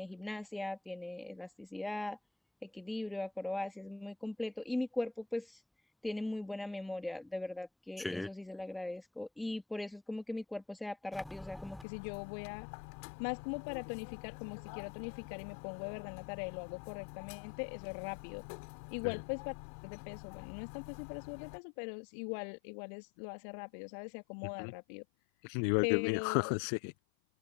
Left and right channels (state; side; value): drops out; right; at 11.9 s